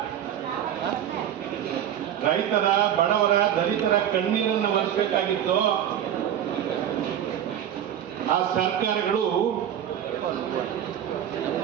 ರೈತರ, ಬಡವರ, ದಲಿತರ ಕಣ್ಣೀರನ್ನು ಒರೆಸಬೇಕಾಗಿತ್ತು, ಆ ಸರ್ಕಾರಗಳು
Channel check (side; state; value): left; quieter; 10.2 dB